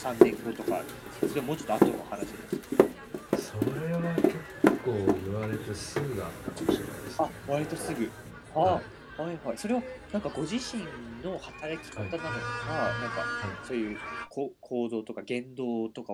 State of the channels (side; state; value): both; identical; correlation 1.00